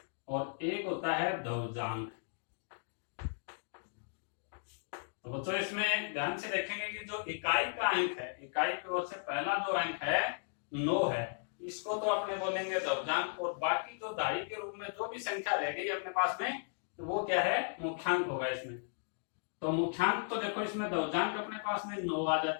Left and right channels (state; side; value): silent; right; digital silence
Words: और एक होता है ध्वजांक। तो बच्चों इसमें ध्यान से देखेंगे कि जो इकाई का अंक है, इकाई की ओर से पहला जो अंक है 9 है, इसको तो अपने बोलेंगे ध्वजांक। और बाकी जो दाई के रूप में जो भी संख्या रह गई अपने पास में, तो वो क्या है, मुख्यांक होगा इसमें। तो मुख्यांक तो देखो इसमें ध्वजांक अपने पास में 9 आ